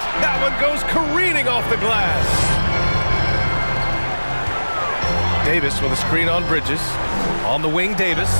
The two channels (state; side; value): inverted; both; correlation -1.00